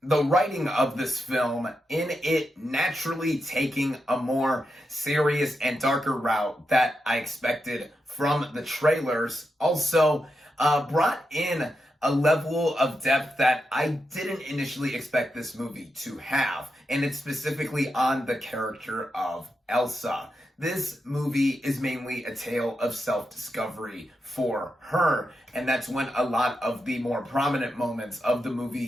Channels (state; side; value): normal; both; correlation 0.86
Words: The writing of this film, in it naturally taking a more serious and darker route that I expected from the trailers, also brought in a level of depth that I didn't initially expect this movie to have, and it's specifically on the character of Elsa. This movie is mainly a tale of self-discovery for her, and that's when a lot of the more prominent moments of the